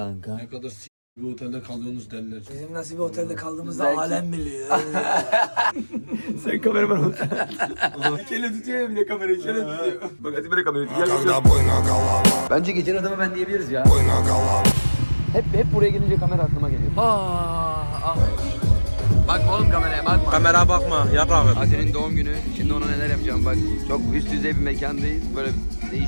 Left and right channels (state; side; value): inverted; both; correlation -1.00